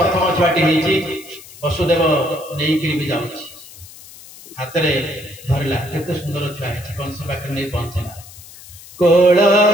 छुआटी वसुदेव नहीं भी जाऊँ हाथ में धरला केते सुंदर छुआ है कंस पाखे नहीं पहुंचला कोल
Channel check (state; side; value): noise; left; hiss, 19 dB below the sound